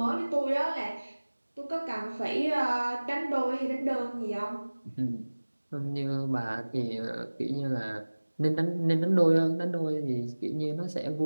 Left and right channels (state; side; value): inverted; both; correlation -1.00